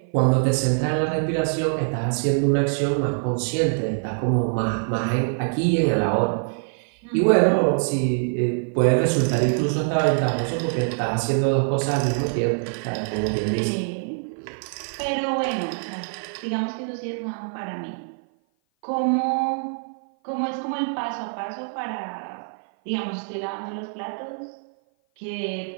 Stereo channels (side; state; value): left; silent; 56 dB below the other